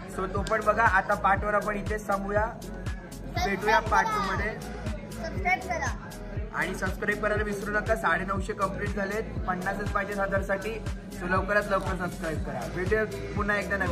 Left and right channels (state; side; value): identical; both; correlation 1.00